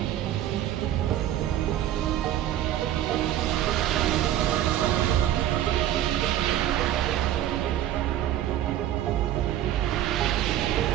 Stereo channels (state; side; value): quieter; left; 12.1 dB